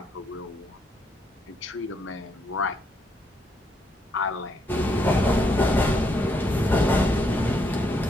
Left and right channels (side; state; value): both; normal; correlation 0.75